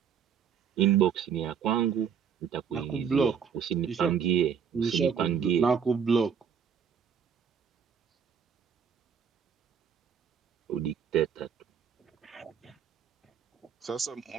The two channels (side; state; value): left; quieter; 7.2 dB